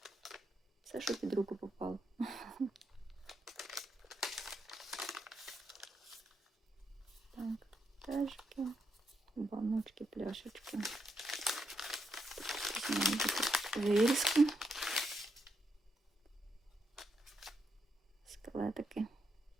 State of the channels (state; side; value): normal; both; correlation 0.81